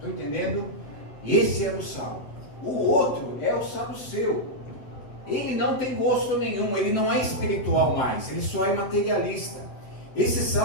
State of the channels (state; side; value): late; right; 7.9 ms